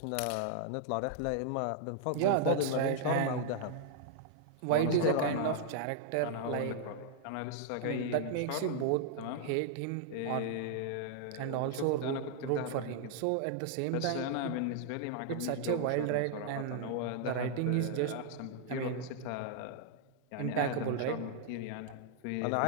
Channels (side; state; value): both; different; correlation -0.01